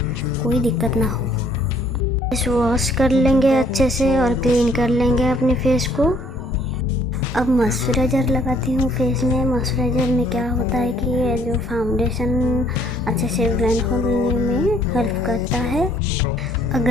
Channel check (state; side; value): normal; both; correlation 0.62